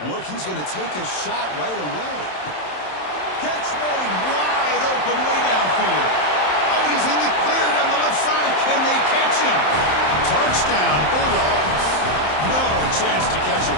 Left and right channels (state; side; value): late; right; 27 ms